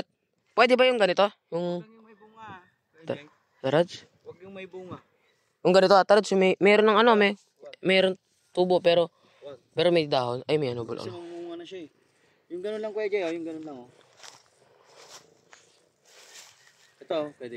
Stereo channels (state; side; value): identical; both; correlation 1.00